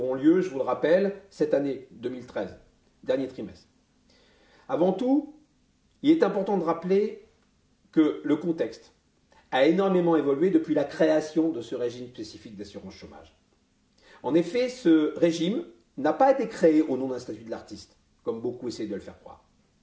lieu, je vous le rappelle, cette année 2013, dernier trimestre. Avant tout, il est important de rappeler que le contexte a énormément évolué depuis la création de ce régime spécifique d'assurance chômage. En effet, ce régime n'a pas été créé au nom d'un statut de l'artiste, comme beaucoup essayent de le faire croire.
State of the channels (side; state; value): both; identical; correlation 1.00